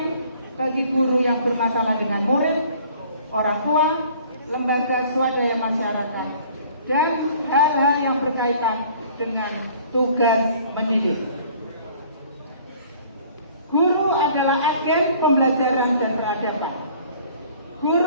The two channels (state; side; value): inverted; both; correlation -0.53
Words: bagi guru yang bermasalah dengan murid, orang tua, lembaga swadaya masyarakat, dan hal-hal yang berkaitan dengan tugas mendidik. Guru adalah agen pembelajaran dan peradaban.